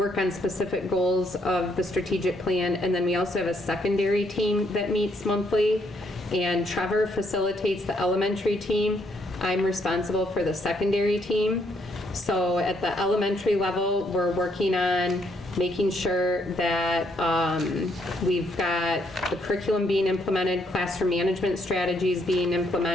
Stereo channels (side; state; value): both; normal; correlation 0.72